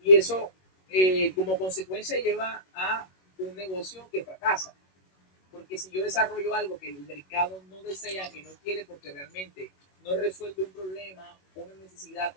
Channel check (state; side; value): late; right; 21 ms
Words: Y eso, como consecuencia, lleva a un negocio que fracasa. Porque si yo desarrollo algo que el mercado no desea, que no quiere, porque realmente no resuelve un problema, una necesidad